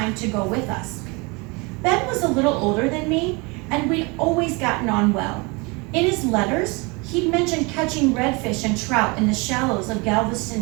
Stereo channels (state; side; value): quieter; left; 28.0 dB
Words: to go with us. Ben was a little older than me, and we'd always gotten on well. In his letters, he'd mentioned catching redfish and trout in the shallows of Galveston